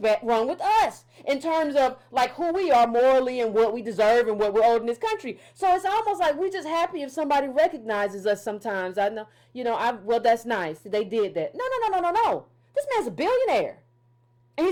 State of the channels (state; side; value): identical; both; correlation 1.00